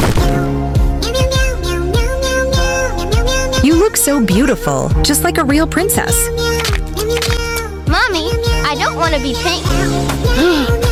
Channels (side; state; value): both; identical; correlation 1.00